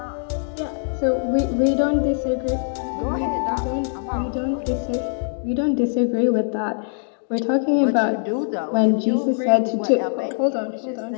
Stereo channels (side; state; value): right; silent; digital silence